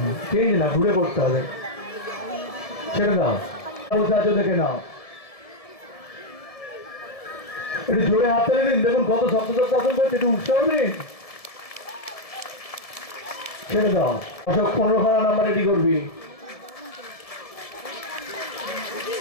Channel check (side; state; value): right; late; 1.7 ms